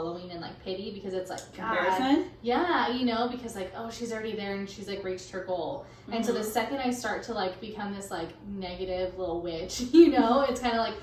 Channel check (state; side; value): identical; both; correlation 1.00